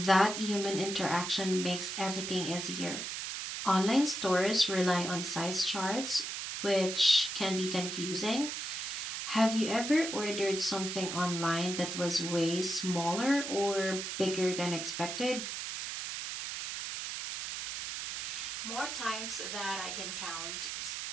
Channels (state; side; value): noise; right; hiss, 5 dB below the sound